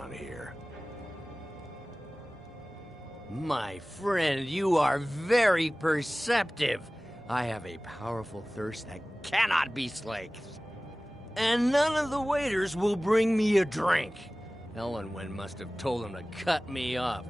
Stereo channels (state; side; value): normal; both; correlation 0.98